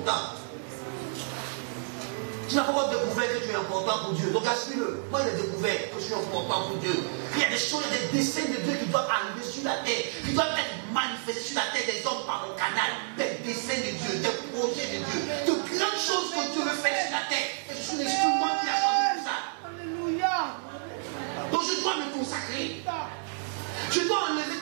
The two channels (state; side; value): silent; left; digital silence